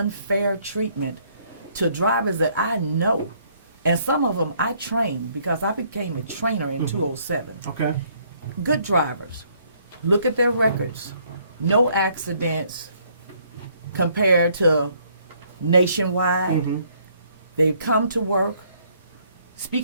treatment to drivers that I know. And some of them I trained, because I became a trainer in 2007. Okay. Good drivers. Look at their records. No accidents compared to nationwide. Mm-hmm. They come to work.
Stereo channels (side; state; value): both; inverted; correlation -0.66